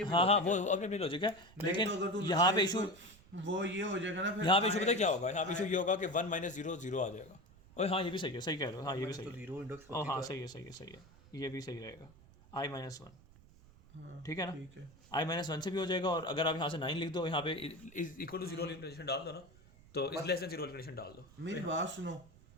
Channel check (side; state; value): right; noise; rumble, 24 dB below the sound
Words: हाँ हाँ वो अपनी अपनी लॉजिक है, नहीं लेकिन तो अगर तू यहाँ पे 9th इशू, वो ये हो जाएगा ना फिर यहाँ पे इशू पता है क्या होगा? यहाँ पे इशू ये होगा कि 1 - 0 0 आ जाएगा। ओए हाँ ये भी सही है, सही कह रहे हो, हाँ ये भी सही है। 0 इंडेक्स ओ हाँ सही है, ये भी सही रहेगा। I -1, हाँ, ठीक है ना? ठीक है। I -1 से भी हो जाएगा, और अगर आप यहाँ से 9 लिख दो, यहाँ पे इज इक्वल टू 0 वाली कंडीशन डाल दो ना, तो इज लेस देन 0 वाली कंडीशन डाल दो। मेरी बात सुनो,